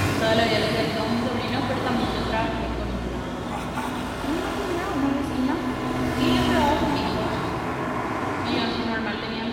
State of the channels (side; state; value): both; identical; correlation 1.00